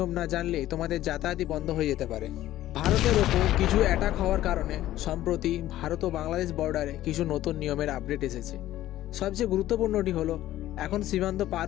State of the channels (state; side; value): quieter; right; 14.1 dB